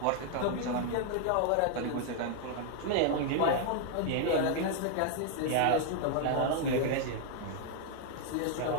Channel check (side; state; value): both; different; correlation 0.00